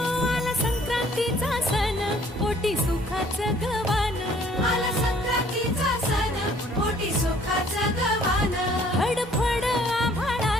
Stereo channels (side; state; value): both; normal; correlation 0.58